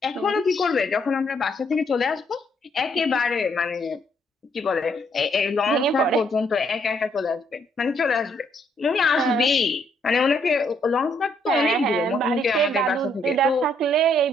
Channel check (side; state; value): both; normal; correlation 0.71